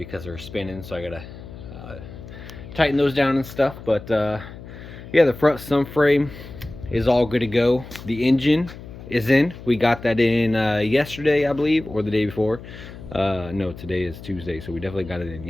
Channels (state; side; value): noise; left; hum, 14 dB below the sound